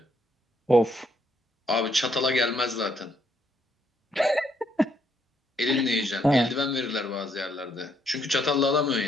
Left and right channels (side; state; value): both; normal; correlation 0.73